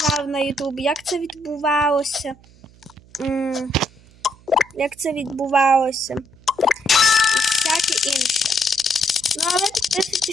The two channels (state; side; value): noise; right; hum, 26 dB below the sound